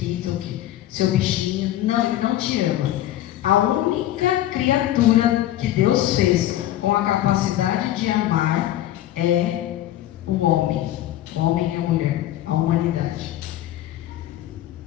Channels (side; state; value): right; quieter; 13.5 dB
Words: seu bichinho, não, ele não te ama. A única criatura que Deus fez com a capacidade de amar é o homem. O homem e a mulher, a humanidade.